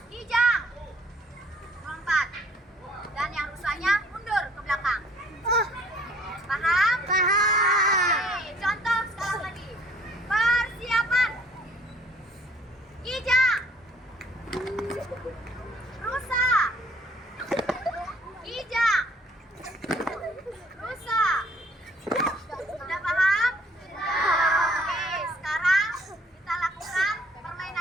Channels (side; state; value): both; normal; correlation 0.59